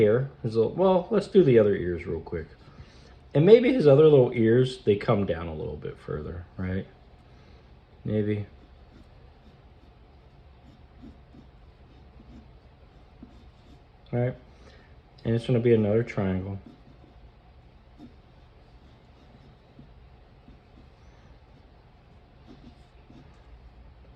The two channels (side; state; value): both; identical; correlation 1.00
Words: Well, let's do the other ears real quick. And maybe his other little ears, they come down a little bit further, right? Maybe. All right. And it's gonna be another triangle.